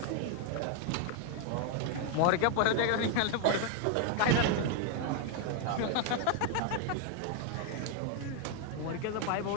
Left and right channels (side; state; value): both; different; correlation 0.00